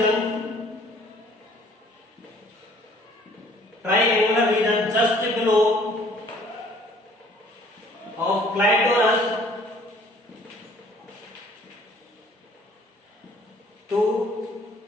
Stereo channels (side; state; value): both; normal; correlation 0.56